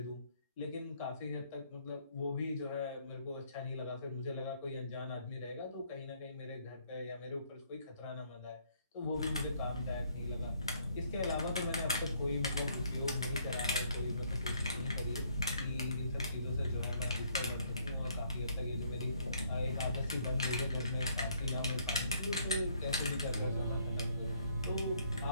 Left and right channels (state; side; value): inverted; both; correlation -0.67